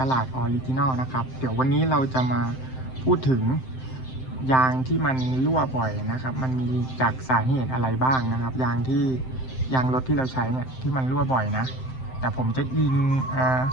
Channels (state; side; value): late; right; 7.7 ms